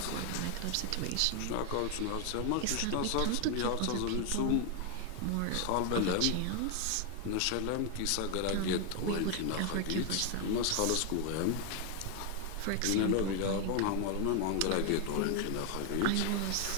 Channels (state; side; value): different; both; correlation 0.00